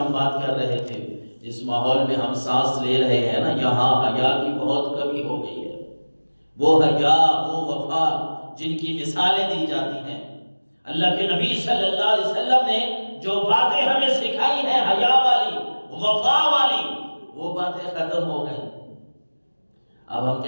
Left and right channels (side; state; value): both; inverted; correlation -1.00